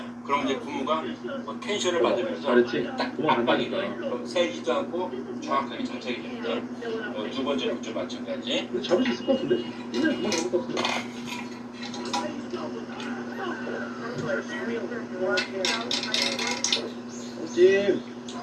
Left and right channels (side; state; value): both; identical; correlation 1.00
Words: 그럼 이제 고무가 뭐 텐션을 받으면서 잘했지? 딱 도망 안 압박이 가니까. 돼요. 그럼 세지도 않고 정확하게 장착이 됩니다. 두 번째 것도 마찬가지. 근데 잡을 수 있을 것 같은데? 그냥 그만 잡을 것 같은데. 찜!